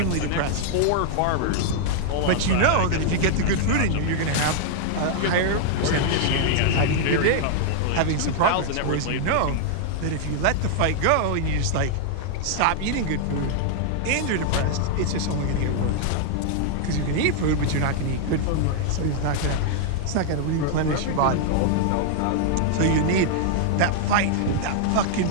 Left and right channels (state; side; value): different; both; correlation -0.01